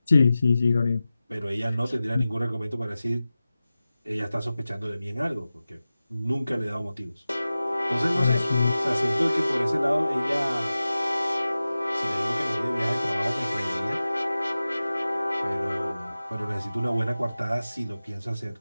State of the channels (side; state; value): both; inverted; correlation -0.95